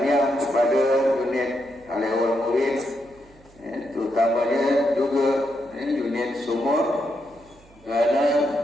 kepada unit awal murid, terutamanya juga unit sumur, kerana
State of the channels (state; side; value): noise; right; hum, 28 dB below the sound